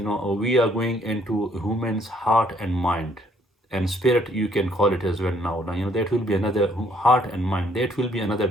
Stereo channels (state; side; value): normal; both; correlation 0.66